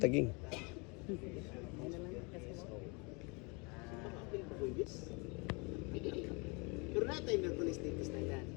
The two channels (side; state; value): right; quieter; 30.2 dB